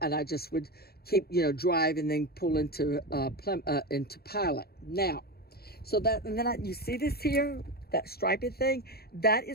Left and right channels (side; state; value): right; late; 0.45 ms